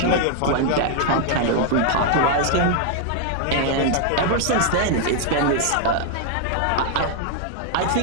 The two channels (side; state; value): both; different; correlation 0.00